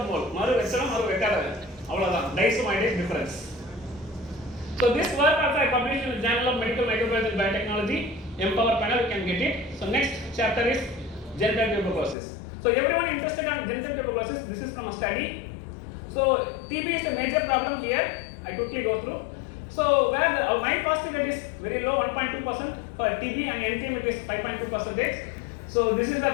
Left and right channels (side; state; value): right; drops out; at 12.2 s